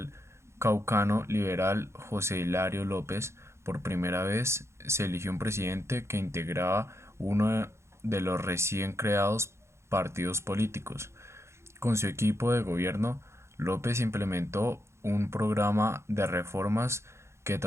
caucano liberal José Hilario López. Por primera vez se eligió un presidente que integraba uno de los recién creados partidos políticos. Con su equipo de gobierno, López implementó un programa de reformas que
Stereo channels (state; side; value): late; left; 0.13 ms